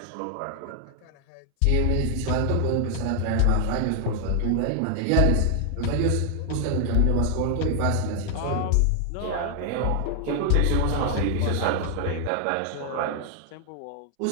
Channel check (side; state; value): both; different; correlation 0.00